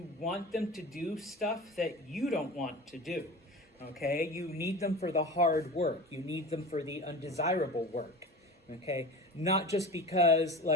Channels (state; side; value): normal; both; correlation 0.33